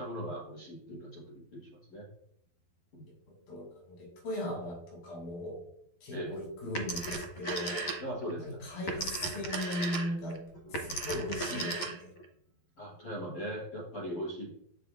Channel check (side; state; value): right; late; 12 ms